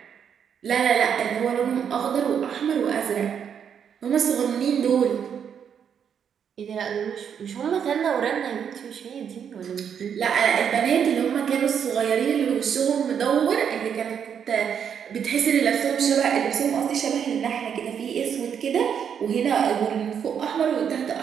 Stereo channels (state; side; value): quieter; left; 7.9 dB